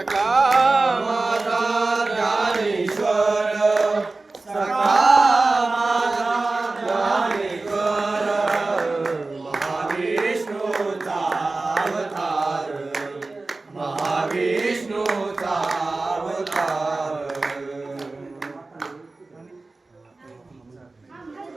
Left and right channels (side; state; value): left; quieter; 3.4 dB